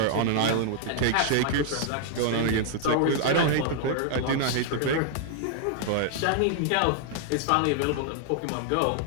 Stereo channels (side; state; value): both; different; correlation -0.01